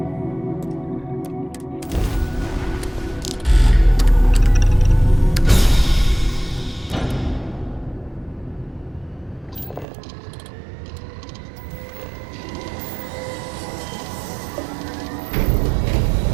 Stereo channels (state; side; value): drops out; left; at 9.9 s